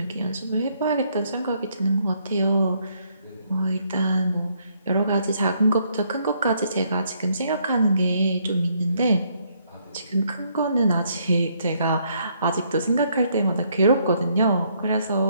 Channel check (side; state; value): both; inverted; correlation -0.70